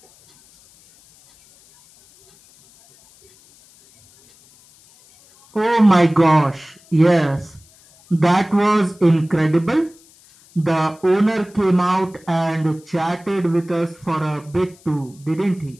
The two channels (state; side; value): noise; left; hiss, 28 dB below the sound